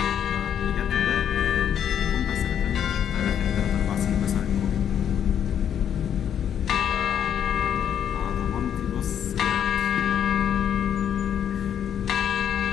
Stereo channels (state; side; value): quieter; right; 9.1 dB